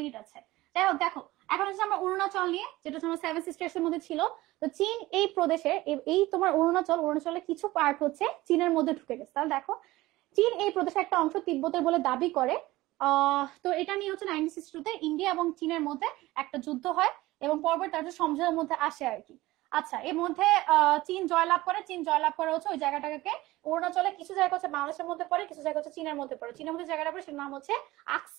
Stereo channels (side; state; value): left; quieter; 18.3 dB